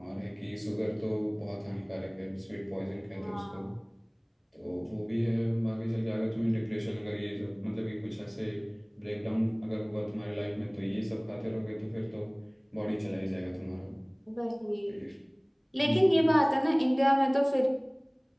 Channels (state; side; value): identical; both; correlation 1.00